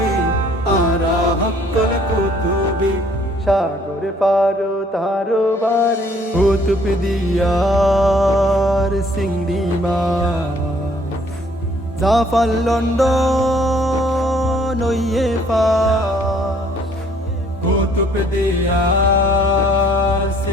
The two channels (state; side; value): normal; both; correlation 0.61